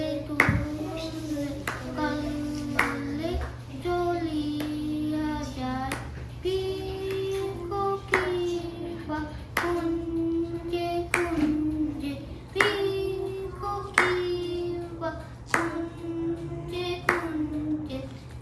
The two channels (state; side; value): identical; both; correlation 1.00